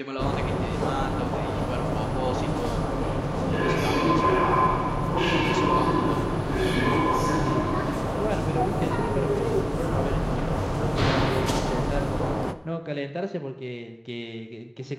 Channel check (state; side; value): identical; both; correlation 1.00